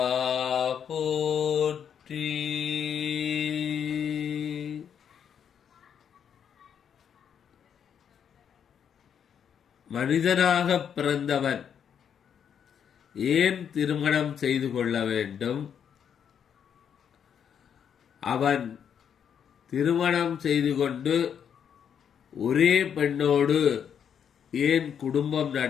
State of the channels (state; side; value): quieter; right; 8.1 dB